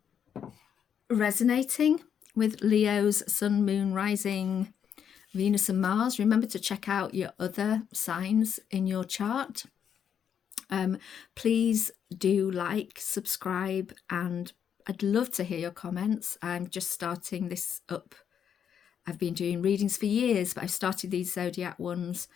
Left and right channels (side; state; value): right; quieter; 8.2 dB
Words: resonating with Leo's Sun, Moon, Rising, Venus and Mars. Remember to check out your other signs in your chart. Please do like, subscribe, and I'd love to hear your comments. I'm just starting this up. I've been doing readings for years, but I've started these zodiac ones,